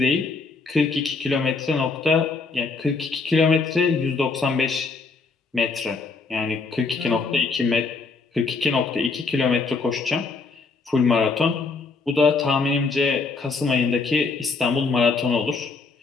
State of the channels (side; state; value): right; quieter; 4.3 dB